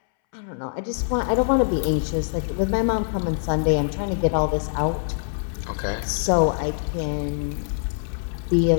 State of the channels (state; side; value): silent; right; 63 dB below the other